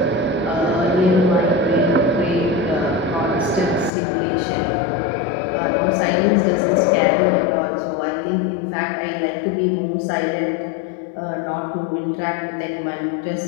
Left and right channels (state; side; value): drops out; right; at 3.9 s